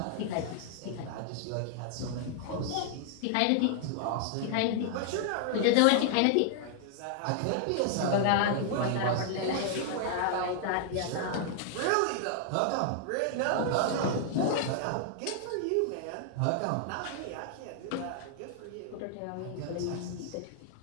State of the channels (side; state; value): both; different; correlation 0.00